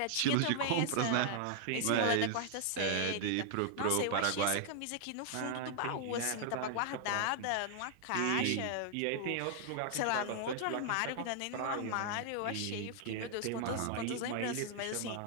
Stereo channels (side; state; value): both; different; correlation 0.00